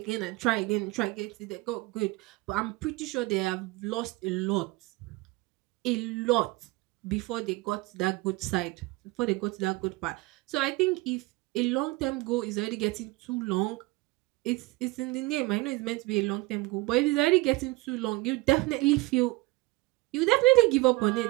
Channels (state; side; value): quieter; left; 21.8 dB